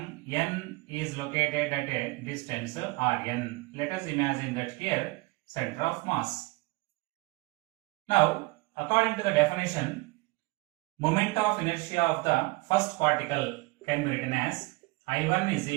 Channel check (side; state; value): left; quieter; 24.1 dB